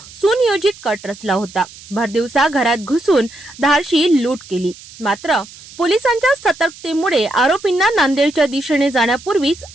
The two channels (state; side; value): noise; right; hiss, 19 dB below the sound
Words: सुनियोजित कट रचला होता। भरदिवसा घरात घुसून धाडशी लूट केली। मात्र पोलिसांच्या सतर्कतेमुळे आरोपींना नांदेडच्या दिशेने जाण्यापूर्वीच